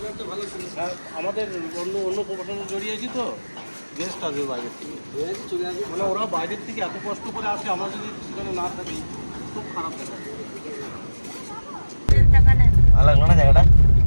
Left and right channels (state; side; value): inverted; both; correlation -1.00